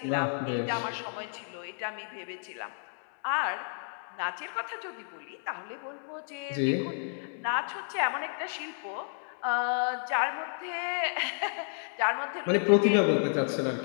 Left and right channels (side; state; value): right; silent; 57 dB below the other